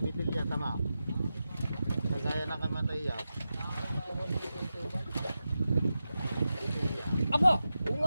tama. Kagaya na kamatay yan. Aba! Oo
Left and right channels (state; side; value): inverted; both; correlation -0.92